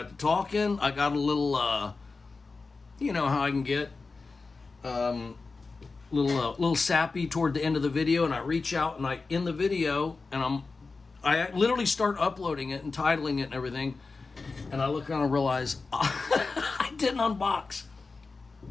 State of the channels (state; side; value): quieter; right; 4.1 dB